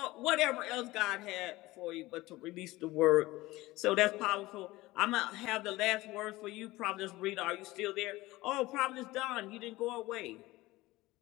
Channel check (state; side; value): quieter; right; 19.2 dB